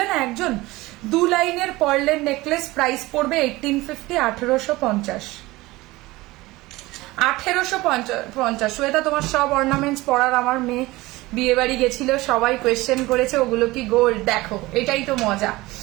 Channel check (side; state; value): left; quieter; 20.0 dB